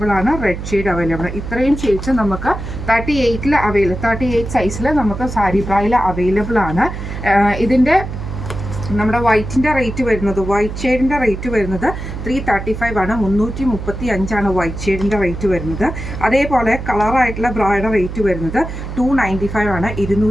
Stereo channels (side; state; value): right; noise; hum, 7 dB below the sound